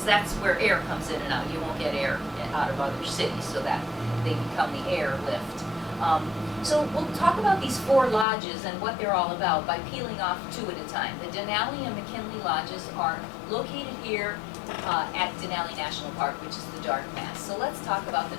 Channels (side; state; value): right; drops out; at 8.2 s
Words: that's where air comes in and out. You won't get air out of other cities, so that they become the airlift. So we'll talk about these 4 lodges and what they're all about by peeling off 2 at a time. The Denali and McKinley lodges are located here at Denali National Park, which is the dark mass. So let's talk about the